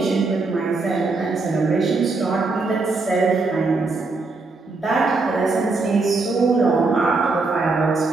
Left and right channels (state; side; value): quieter; left; 3.7 dB